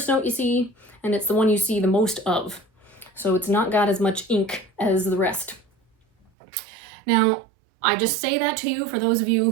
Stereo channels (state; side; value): drops out; left; at 6.3 s